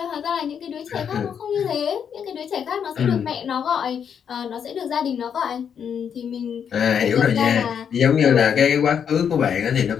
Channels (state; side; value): quieter; right; 7.7 dB